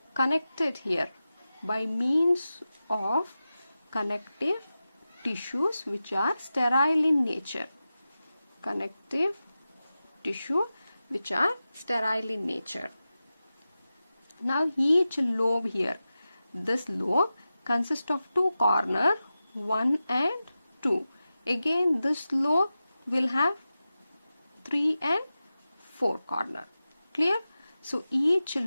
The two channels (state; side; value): inverted; both; correlation -0.93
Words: connected here by means of connective tissues which are sterile in nature. Now each lobe here, this lobe consists of two corners, 1 and 2. Again this lobe will have 3 and 4 corners. Clear? So each